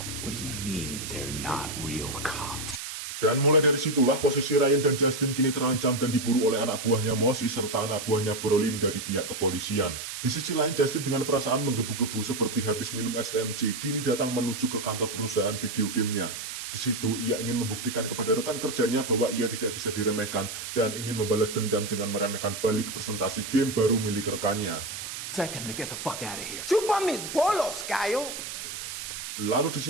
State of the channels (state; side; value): noise; right; hiss, 7 dB below the sound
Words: What do you mean they're not real cops? Dan mulai dari situlah posisi Ryan dan Justin kini terancam dan diburu oleh anak buahnya Mosi serta anak buahnya Brolin dari pihak kepolisian. Di sisi lain, Justin dengan perasaan menggebu-gebu seperti habis minum STMJ kini datang menuju ke kantor perusahaan video gamenya. Di situ ia ingin membuktikan kepada rekan kerjanya bahwa ia tidak bisa diremehkan dan ingin membalas dendam dengan meremehkan balik presentasi game baru milik rekannya. Second to get the fuck out of here. Chupa mis bolos, Cayo. Lalu di